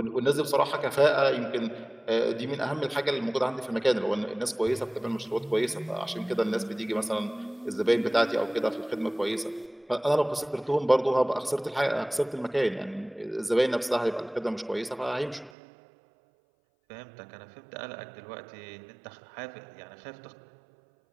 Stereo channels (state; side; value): drops out; left; at 15.5 s